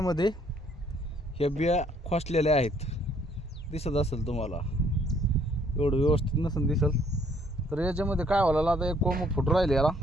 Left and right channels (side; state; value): both; normal; correlation 0.64